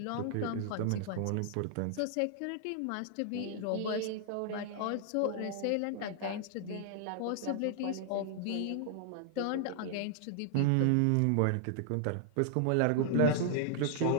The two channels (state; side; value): different; both; correlation 0.00